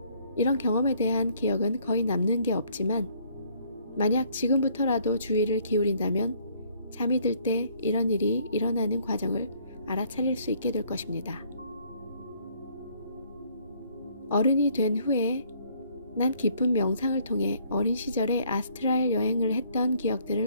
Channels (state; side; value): inverted; both; correlation -0.63